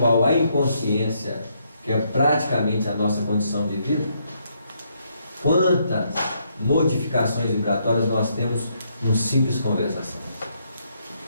a inconsciência, que é praticamente a nossa condição de vida, quantas modificações vibratórias nós temos numa simples conversação.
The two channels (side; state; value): both; inverted; correlation -0.75